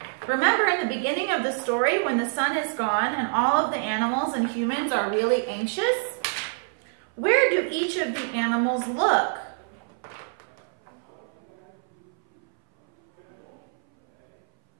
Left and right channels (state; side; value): silent; left; 59 dB below the other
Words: Remember in the beginning of the story when the sun is gone and all of the animals and humans are really anxious? Where do each of the animals look?